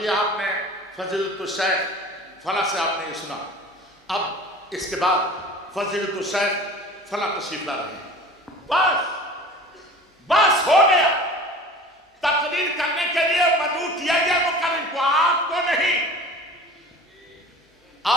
آپ نے فضیلۃ الشیخ فلاں سے آپ نے یہ سنا، اب اس کے بعد فضیلۃ الشیخ فلاں تشریف لا رہے ہیں، بس ہو گیا۔ تقریر کرنے کے لیے مدعو کیا گیا مقرر کو، آپ کو نہیں۔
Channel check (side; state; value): both; normal; correlation 0.41